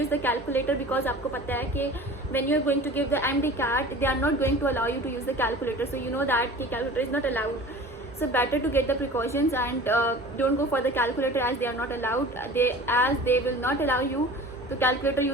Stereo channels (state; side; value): normal; both; correlation 0.40